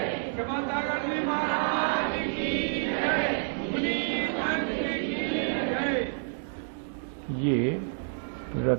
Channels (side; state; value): left; silent; digital silence